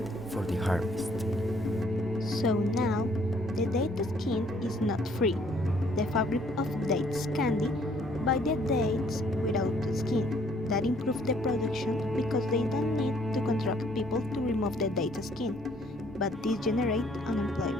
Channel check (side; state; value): both; normal; correlation 0.63